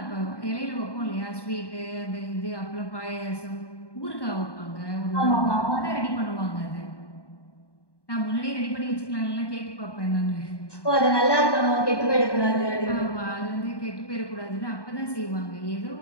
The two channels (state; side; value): late; right; 1.2 ms